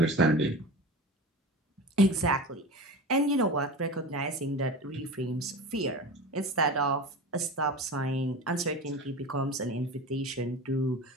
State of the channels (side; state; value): both; normal; correlation 0.30